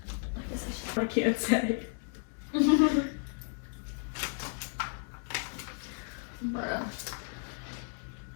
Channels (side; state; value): right; silent; 55 dB below the other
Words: I guess I I can't say. should.